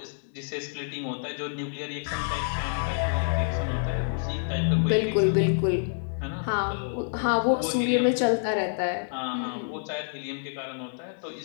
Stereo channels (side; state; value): right; silent; 60 dB below the other